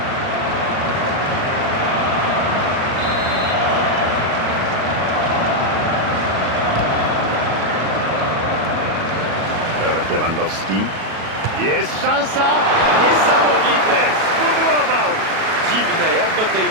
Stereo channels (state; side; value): late; left; 37 ms